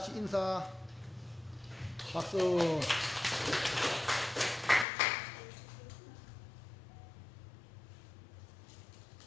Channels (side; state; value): right; drops out; at 4.9 s